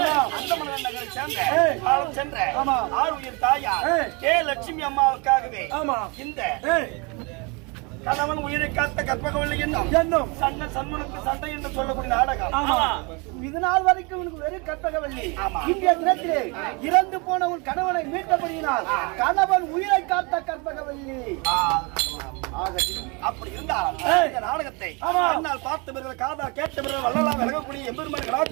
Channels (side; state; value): left; quieter; 29.9 dB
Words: அந்தமலை நகரை சேர்ந்த காலம் சென்ற ஆறு உயிர் தாயார் கே லட்சுமி அம்மாவுக்காகவே இந்த கணவன் உயிரை காத்த கற்பகவல்லி என்னும் சண்டை சண்முனுக்கு சண்டை என்று சொல்லக்கூடிய நாடகம். இது நாள் வரைக்கும் உனக்கு வெறும் கற்பகவல்லி. இன்றைய தினத்திலே இறந்து போன உன் கணவனை மீட்டபடியினால் கணவன் உயிரை காத்த கற்பகவல்லி. அப்படி இருந்தால் இந்த நாடகத்தை அண்ணால் பார்த்தவர்கள் காதா கேட்டவர்கள் வள்ளலா விலகக்கூடிய எம்பெருமான்